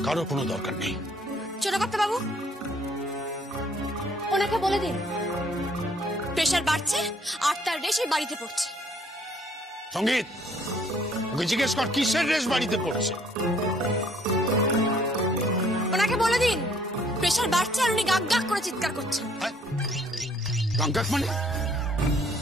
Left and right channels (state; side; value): normal; both; correlation 0.62